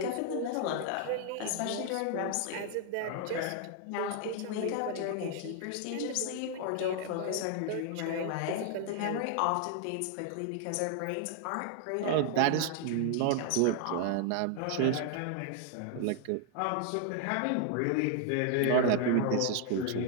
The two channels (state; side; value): different; both; correlation 0.00